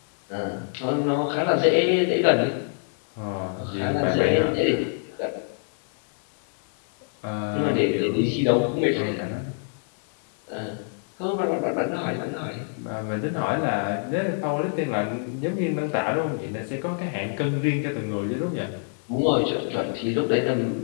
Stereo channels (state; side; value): silent; right; 61 dB below the other